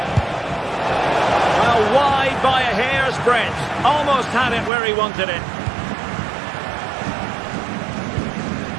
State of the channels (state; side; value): drops out; left; at 4.7 s